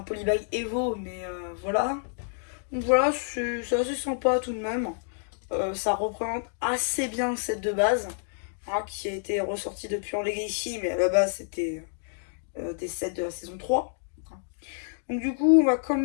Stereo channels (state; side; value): silent; right; digital silence